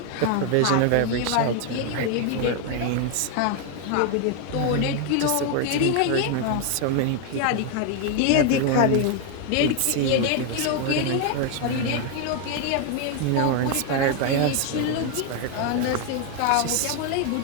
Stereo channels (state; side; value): different; both; correlation 0.01